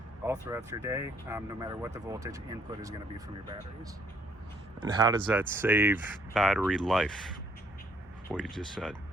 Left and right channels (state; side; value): normal; both; correlation 0.65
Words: all throughout your day, no matter what the voltage input is going to be from your batteries. And how does that save battery life, what you just said?